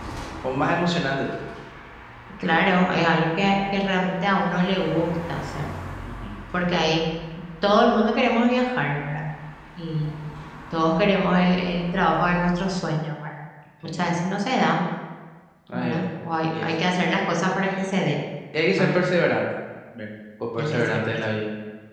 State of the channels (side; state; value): both; identical; correlation 1.00